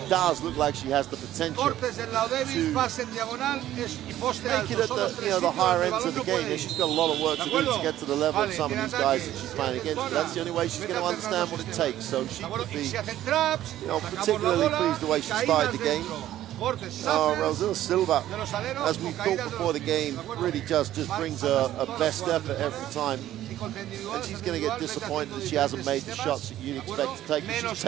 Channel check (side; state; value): left; quieter; 13.1 dB